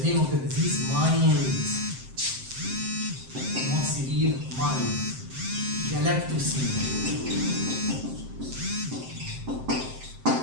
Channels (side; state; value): left; late; 7.7 ms